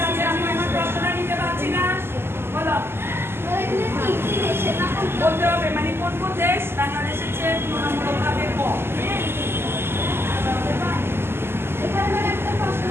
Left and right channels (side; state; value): left; late; 0.12 ms